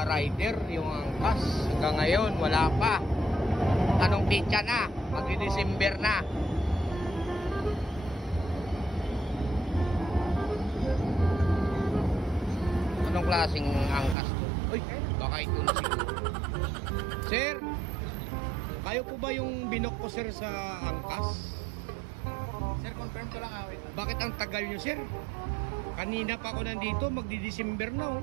rider, yung angkas. Hanggang ngayon, wala pa. Anong pitsa na? Magdi-December na. Anong klaseng angkas to? Uy, baka ito na siguro. Sir, kayo po ba yung binok ko, sir, sa angkas? Sir, confirm ko lang. Wait. Bakit ang tagal nyo, sir? Kanina pa ako nandito, magdi-December na,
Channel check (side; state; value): left; drops out; at 14.2 s